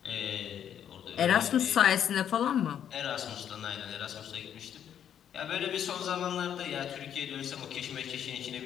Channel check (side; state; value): right; quieter; 9.3 dB